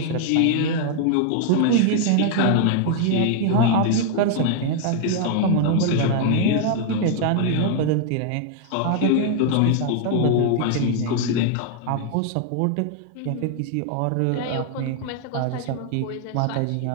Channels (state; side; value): different; both; correlation 0.00